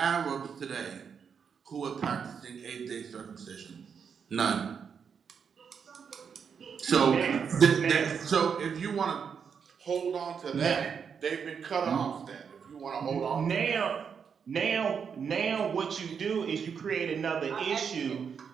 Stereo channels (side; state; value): left; quieter; 6.7 dB